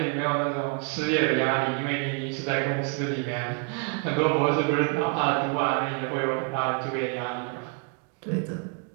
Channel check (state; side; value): quieter; left; 37.1 dB